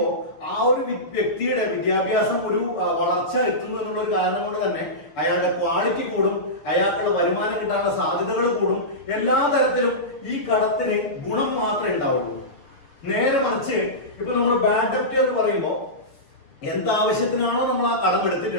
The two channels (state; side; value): late; right; 7.1 ms